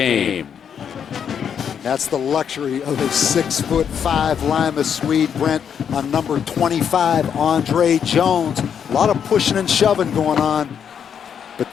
That's the luxury of a 6'5" Lima Swede, Brent, on number 25, Andre Jones. A lot of pushing and shoving going on, but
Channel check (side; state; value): right; quieter; 7.9 dB